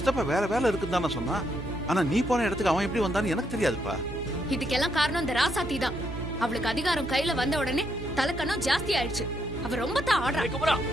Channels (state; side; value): noise; right; hum, 9 dB below the sound